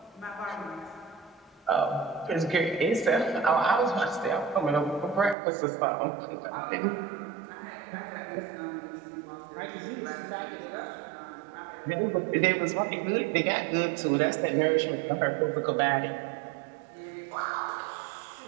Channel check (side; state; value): left; drops out; at 5.4 s